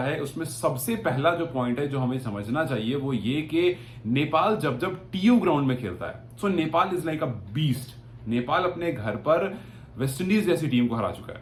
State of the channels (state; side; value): identical; both; correlation 1.00